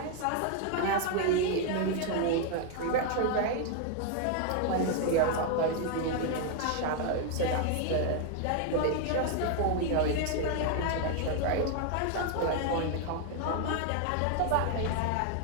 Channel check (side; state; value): both; different; correlation 0.00